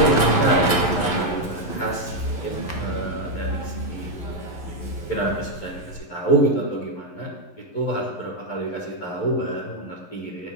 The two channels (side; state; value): right; late; 11 ms